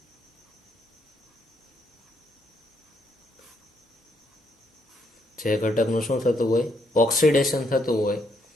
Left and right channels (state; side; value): normal; both; correlation 0.74